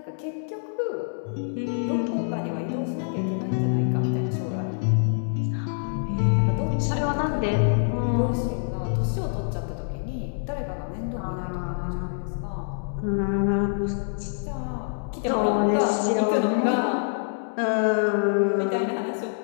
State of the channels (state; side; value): silent; right; digital silence